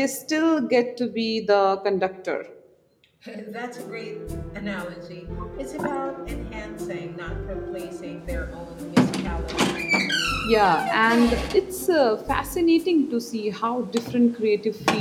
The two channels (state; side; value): identical; both; correlation 1.00